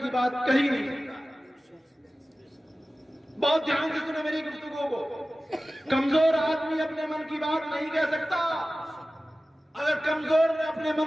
کی بات کہی نہیں سکتا. بہت دھیان سے سنیں میری گفتگو کو. کمزور آدمی اپنے من کی بات نہیں کہہ سکتا. اگر کمزور نے اپنے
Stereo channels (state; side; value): normal; both; correlation 0.96